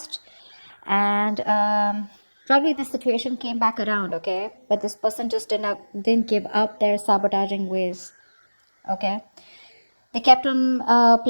and probably the situation came back around. Okay, but this person just didn't give up their sabotaging ways. Okay, they kept on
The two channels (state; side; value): inverted; both; correlation -1.00